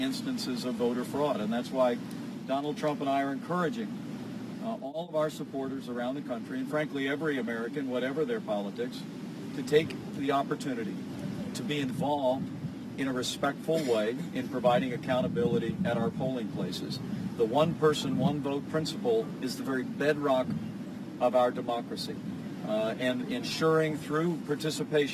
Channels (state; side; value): identical; both; correlation 1.00